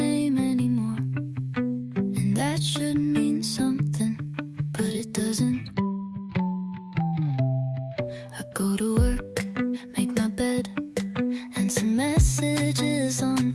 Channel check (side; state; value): both; identical; correlation 1.00